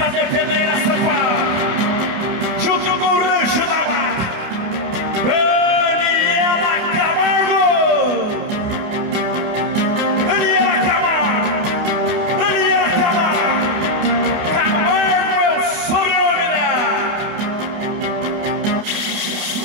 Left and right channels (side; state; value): left; late; 29 ms